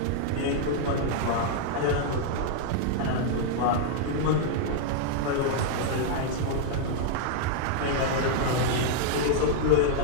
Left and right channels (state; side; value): different; both; correlation -0.01